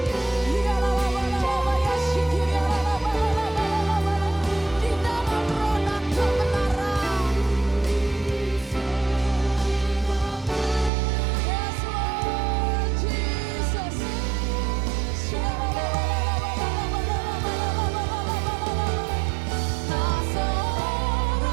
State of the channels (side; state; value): left; drops out; at 10.9 s